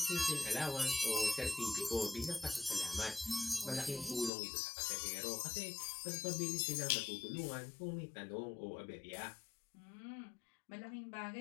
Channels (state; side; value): drops out; right; at 4.3 s